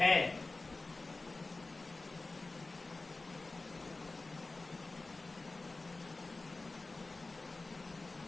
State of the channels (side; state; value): right; quieter; 3.3 dB